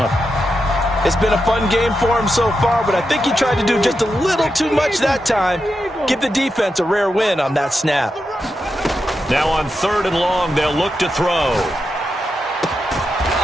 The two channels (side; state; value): both; normal; correlation 0.87